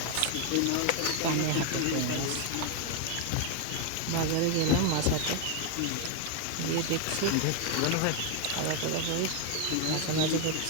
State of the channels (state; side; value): different; both; correlation 0.01